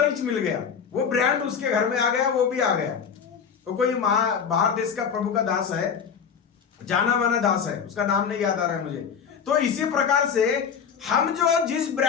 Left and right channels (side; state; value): right; quieter; 6.9 dB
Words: ही मिल गया। वो ब्रांड उसके घर में आ गया, वो भी आ गया। तो कोई बाहर देश का प्रभु का दास है, जाना माना दास है, उसका नाम नहीं याद आ रहा है मुझे। तो इसी प्रकार से हम जो जिस